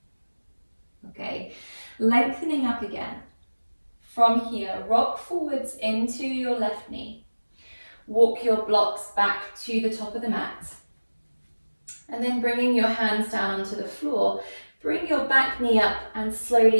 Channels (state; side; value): inverted; both; correlation -1.00